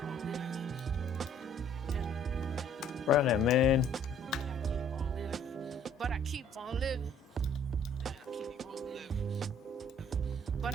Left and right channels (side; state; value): both; normal; correlation 0.59